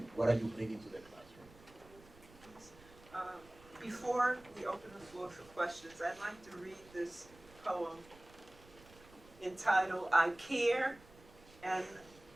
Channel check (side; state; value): right; noise; rumble, 23 dB below the sound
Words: what are you bringing to the classroom? Before we open the floor for questions, I'd like to read this poem entitled, I Care and